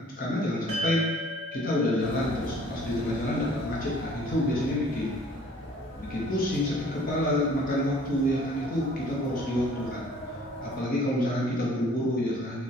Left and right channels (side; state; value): both; normal; correlation 0.54